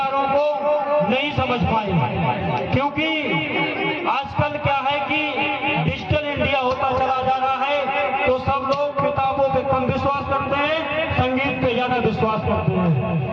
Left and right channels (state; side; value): identical; both; correlation 1.00